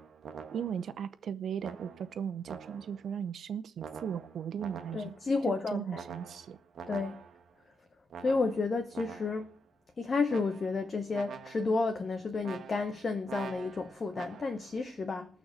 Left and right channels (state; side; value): normal; both; correlation 0.82